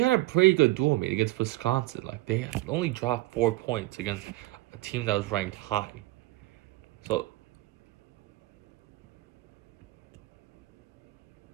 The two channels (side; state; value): left; quieter; 19.3 dB